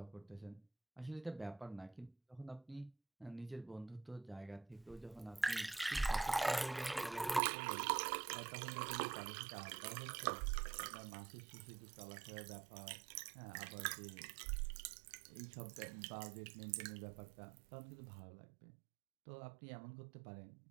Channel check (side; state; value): left; drops out; at 7.4 s